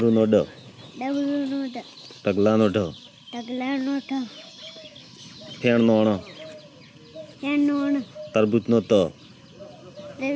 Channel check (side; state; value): both; identical; correlation 1.00